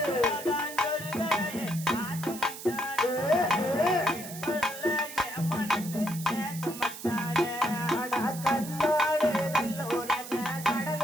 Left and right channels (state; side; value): noise; right; hiss, 12 dB below the sound